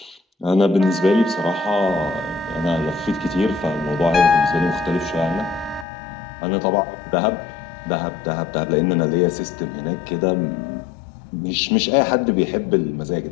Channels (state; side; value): drops out; right; at 5.9 s